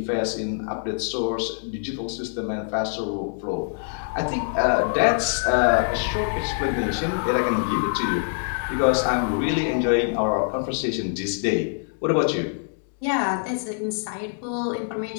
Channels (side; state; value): right; silent; digital silence